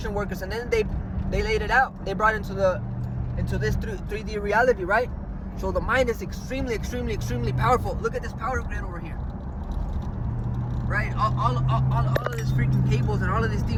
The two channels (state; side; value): identical; both; correlation 1.00